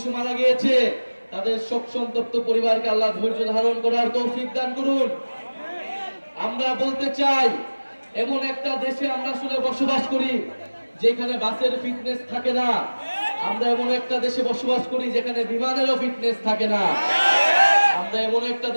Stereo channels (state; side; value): inverted; both; correlation -1.00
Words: মারা গিয়েছে, তাদের শোক সন্তপ্ত পরিবারকে আল্লাহ ধৈর্য ধারণ করার তৌফিক দান করুন। আমরা বলতে চাই, এমন একটা দেশে আমরা আসলে বসবাস করি যেখানে বাসের ফিটনেস থাকে না। আমরা এমন একটা দেশে বসবাস করি যেখানে বিমানেরও ফিটনেস থাকে না। আমরা এমন একটা